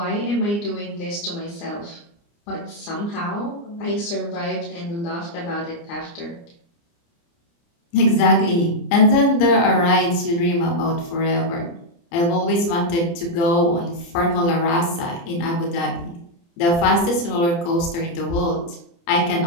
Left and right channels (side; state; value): right; late; 29 ms